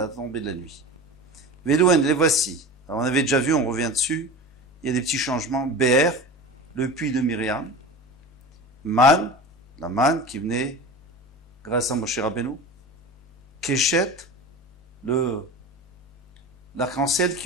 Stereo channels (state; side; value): normal; both; correlation 0.32